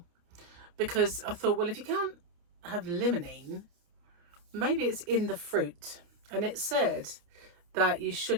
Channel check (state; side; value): late; left; 29 ms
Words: because I thought, well, if you can't have limonene, maybe it's in the fruit. And it said that you